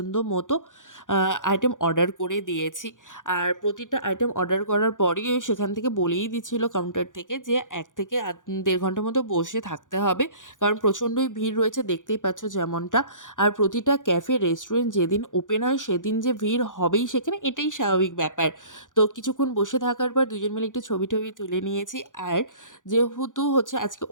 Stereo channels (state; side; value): late; right; 0.88 ms